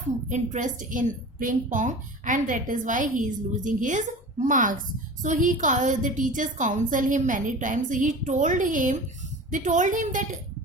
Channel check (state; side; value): normal; both; correlation 0.36